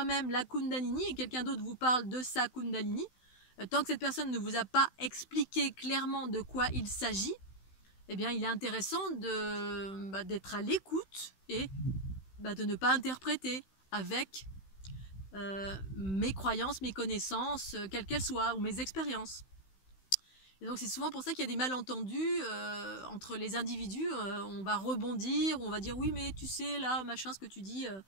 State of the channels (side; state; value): right; late; 16 ms